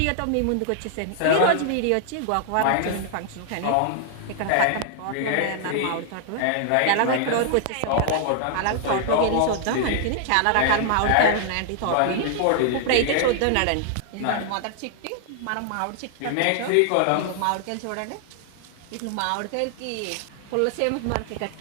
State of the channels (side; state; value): both; different; correlation -0.01